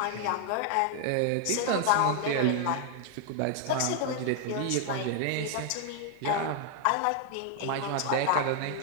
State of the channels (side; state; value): both; different; correlation 0.00